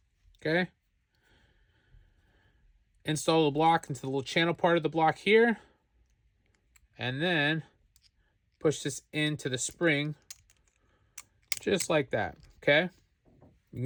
Okay. Install the block into the little channel part of the block here. And then push this into the spring just like that. Okay. You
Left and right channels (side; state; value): both; identical; correlation 1.00